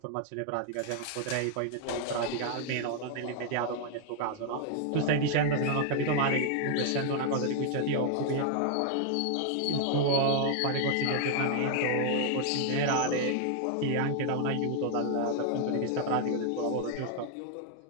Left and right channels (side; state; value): both; different; correlation 0.00